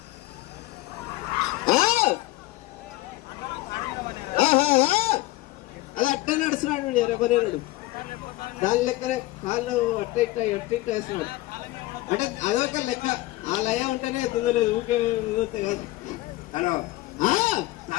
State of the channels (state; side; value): quieter; right; 18.5 dB